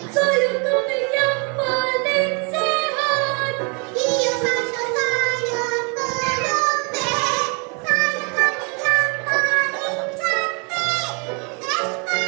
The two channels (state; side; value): quieter; left; 34.3 dB